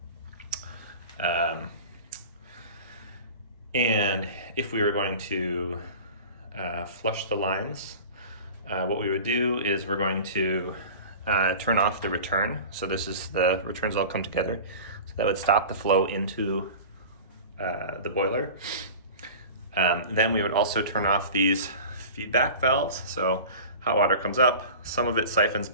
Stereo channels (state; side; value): inverted; both; correlation -0.36